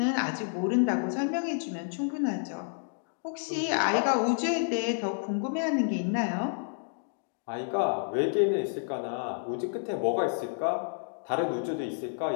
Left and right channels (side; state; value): right; silent; digital silence